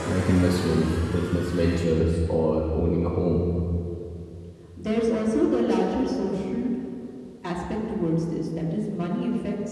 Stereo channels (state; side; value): identical; both; correlation 1.00